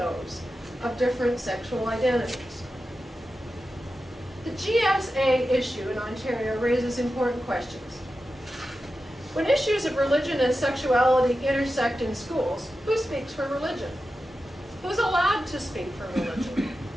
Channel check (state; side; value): normal; both; correlation 0.92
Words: of different sexual identities. The GSA issue in Ontario raises important questions. When issues of religion and sexuality intersect in schools, who speaks for religion? Who's allowed to speak for religion?